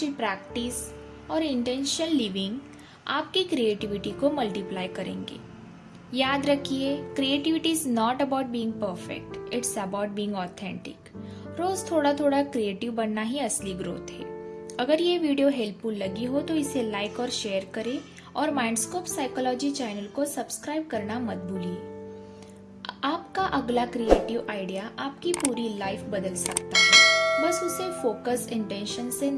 practice और इंटेंशनल लिविंग आपकी क्रिएटिविटी को मल्टीप्लाई करेंगे। याद रखिए, creativity is not about being perfect, it's about being authentic. रोज थोड़ा थोड़ा क्रिएटिव बनना ही असली ग्रोथ है। अगर ये वीडियो हेल्पफुल लगी हो तो इसे लाइक और शेयर करें और माइंडस्कोप साइकोलॉजी चैनल को सब्सक्राइब करना मत भूलिए। आपका अगला क्रिएटिव आइडिया आपकी पूरी लाइफ बदल सकता है। बस उसे फोकस, इंटेंशन से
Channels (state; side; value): identical; both; correlation 1.00